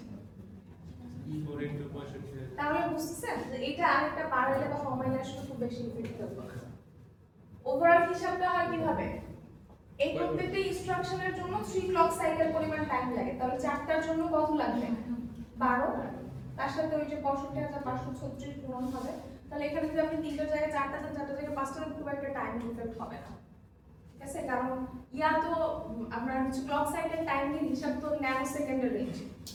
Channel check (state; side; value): identical; both; correlation 1.00